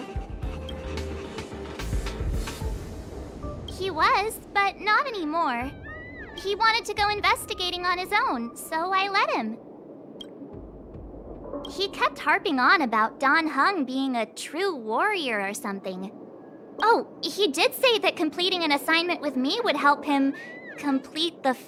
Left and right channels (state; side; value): identical; both; correlation 1.00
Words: He was, but not anymore. He wanted to go investigating on his own, so I let him. He kept harping on about Dan Heng being a true warrior or something. Oh, he did say that completing an assignment with me would help him complete the